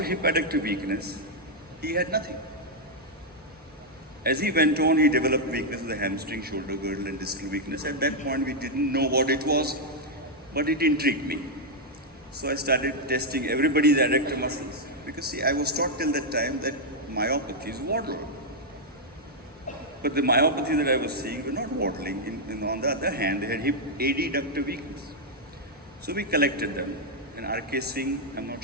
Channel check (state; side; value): normal; both; correlation -0.02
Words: hip adductor weakness, he had nothing. As he went on, he developed weakness of the hamstring, shoulder girdle, and distal weakness. At that point, we didn't know what it was, but it intrigued me. So I started testing everybody's adductor muscles. Because see, I was taught till that time that myopathies waddle. But the myopathies that I was seeing were not waddling. On the other hand, they had hip adductor weakness. So we collected them. And R.K. Singh, I'm not